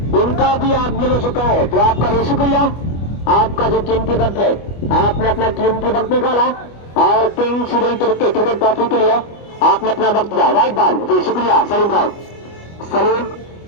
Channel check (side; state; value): right; late; 25 ms